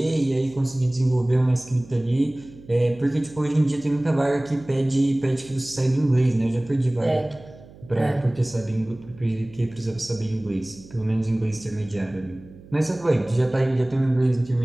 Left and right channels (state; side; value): noise; right; hum, 21 dB below the sound